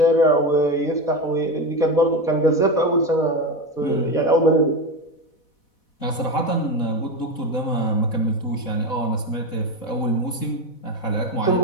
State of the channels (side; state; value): right; late; 4.1 ms